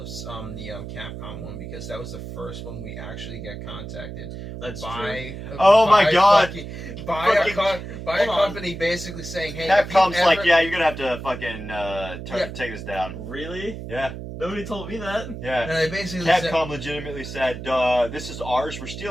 one because that was the first one we actually got contacted That's true. by. Oh my by God. fucking- by Fucking- a Hold on. company basically saying, "Hey, if you Capcom's like, ever- yeah, you're gonna have to fucking Yeah. take this down. Really? Yeah, Nobody told me that. yeah. And they basically said, Capcom legitimately said, "This is ours. We're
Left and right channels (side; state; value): right; noise; hum, 9 dB below the sound